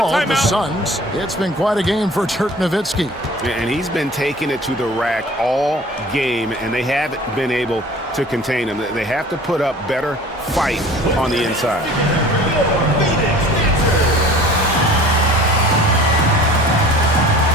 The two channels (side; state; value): both; normal; correlation 0.45